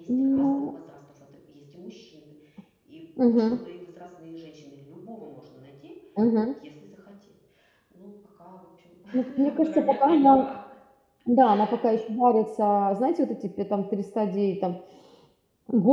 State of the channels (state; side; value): identical; both; correlation 1.00